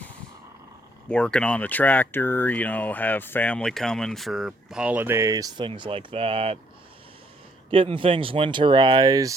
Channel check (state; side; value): normal; both; correlation 0.68